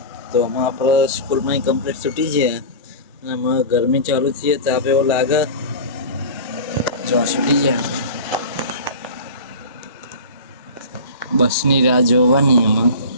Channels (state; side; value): inverted; both; correlation -0.32